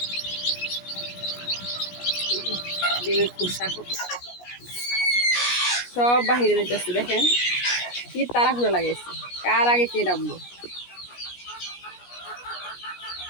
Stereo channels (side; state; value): right; late; 17 ms